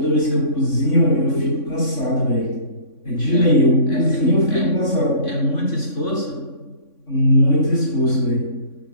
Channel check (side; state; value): right; late; 3.6 ms